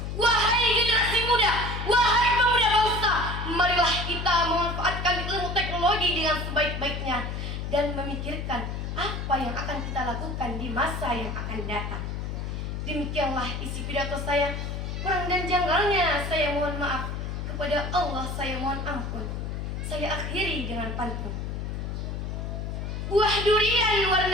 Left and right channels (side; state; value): left; noise; hum, 4 dB below the sound